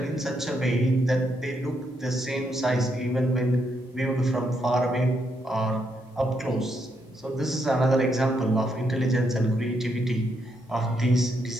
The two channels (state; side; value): normal; both; correlation 0.78